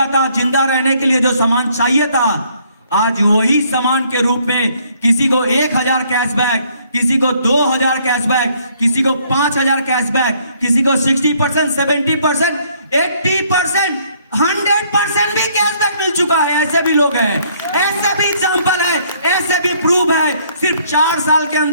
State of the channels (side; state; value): both; inverted; correlation -0.65